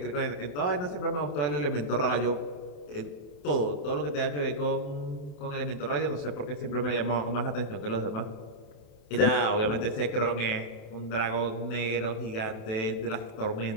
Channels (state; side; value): late; right; 28 ms